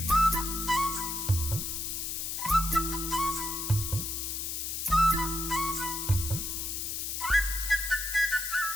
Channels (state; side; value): noise; left; hiss, 3 dB below the sound